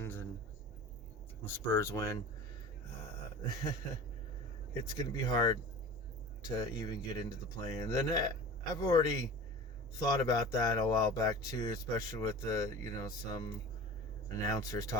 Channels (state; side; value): normal; both; correlation 0.36